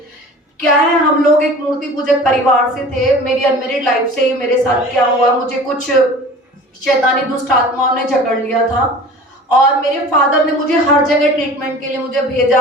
क्या है, हम लोग एक मूर्ति पूजक परिवार से थे। मेरी अनमेरिड लाइफ से ही मेरे साथ क्या हुआ, मुझे कुछ शैतानी दुष्ट आत्माओं ने जकड़ लिया था, और मेरे फादर ने मुझे हर जगह ट्रीटमेंट के लिए मुझे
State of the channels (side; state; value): both; normal; correlation 0.41